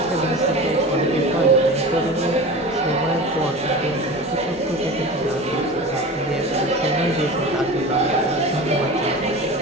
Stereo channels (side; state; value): both; normal; correlation 0.32